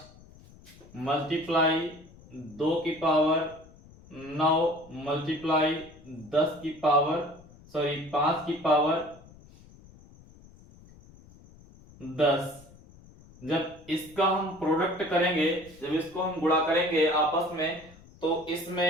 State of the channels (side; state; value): left; noise; rumble, 23 dB below the sound